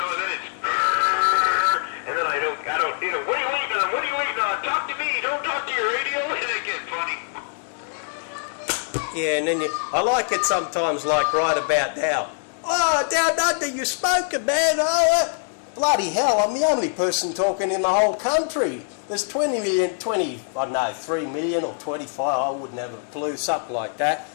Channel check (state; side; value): silent; right; 63 dB below the other